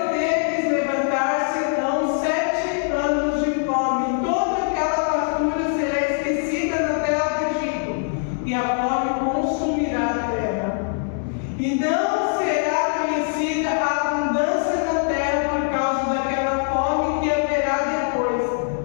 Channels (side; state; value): right; silent; 64 dB below the other